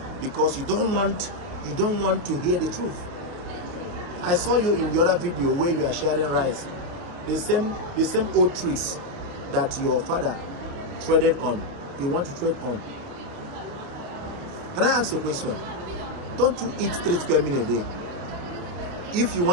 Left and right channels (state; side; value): late; left; 28 ms